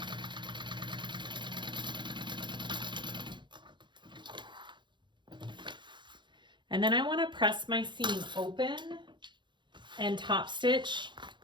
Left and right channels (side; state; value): left; late; 0.23 ms